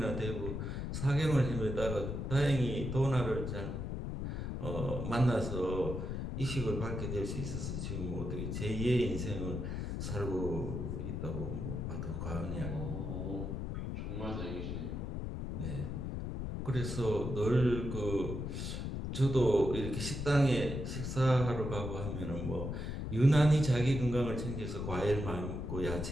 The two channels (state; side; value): noise; left; rumble, 4 dB below the sound